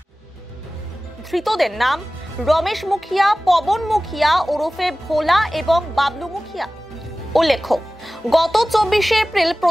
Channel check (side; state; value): both; normal; correlation 0.97